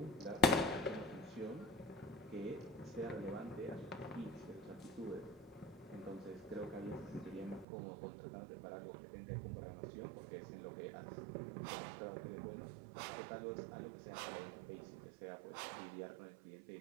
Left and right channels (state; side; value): drops out; left; at 7.7 s